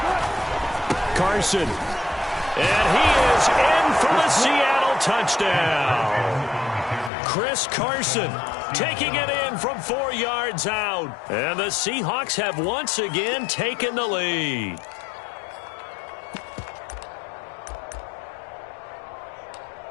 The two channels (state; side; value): drops out; right; at 7.1 s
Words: Carson. And he is in for the Seattle touchdown. Chris Carson taking it in from 4 yards out. And the Seahawks have once again taken the lead.